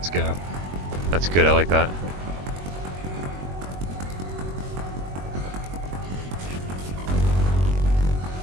go. That's good, I like that.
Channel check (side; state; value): left; late; 21 ms